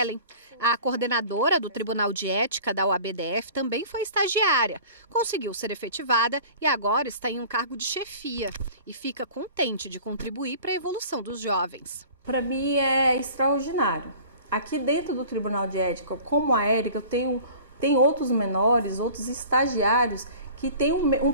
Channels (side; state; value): both; inverted; correlation -0.44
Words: A coordenadora do Tribunal de Ética da UABDF também foi estagiária. Conseguiu ser efetivada e agora está em um cargo de chefia. E fica contente de contribuir para a evolução dos jovens. Para mim é extraordinário. Aqui dentro do Tribunal de Ética, como a Érica, eu tenho outros menores, outros estagiários que têm um